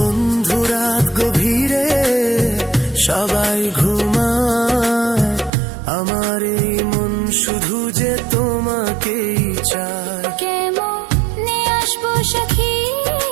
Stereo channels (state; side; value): drops out; left; at 5.5 s